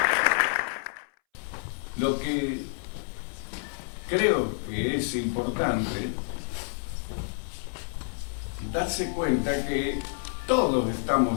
Lo que creo que es importante darse cuenta que todos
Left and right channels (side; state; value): right; silent; 59 dB below the other